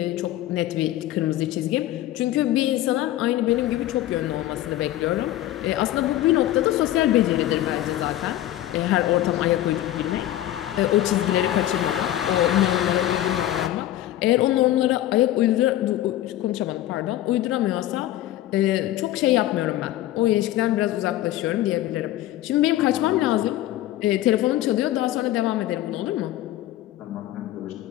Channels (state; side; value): quieter; right; 14.0 dB